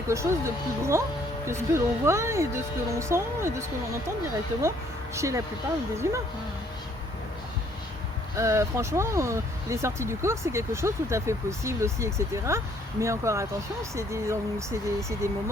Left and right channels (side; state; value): both; normal; correlation 0.64